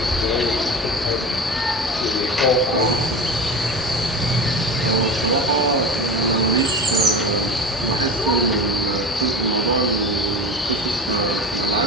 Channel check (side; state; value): both; normal; correlation 0.30